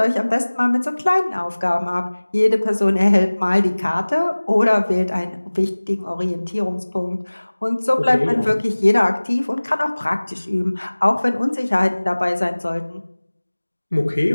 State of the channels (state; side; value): inverted; both; correlation -1.00